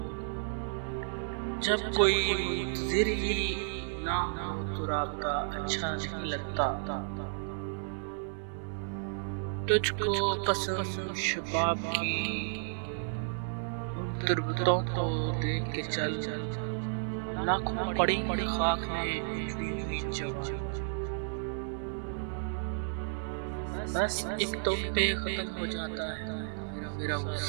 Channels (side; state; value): left; silent; digital silence